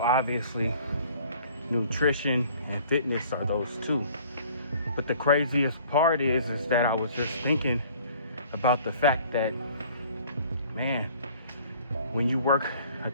nutrition and fitness are those two. But the craziest part is that I was just thinking about the fact that, man, when you work a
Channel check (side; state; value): both; inverted; correlation -0.53